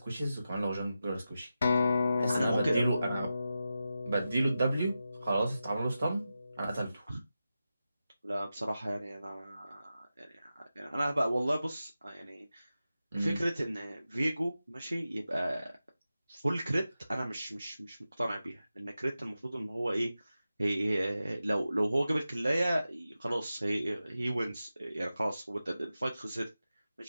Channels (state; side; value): inverted; both; correlation -0.92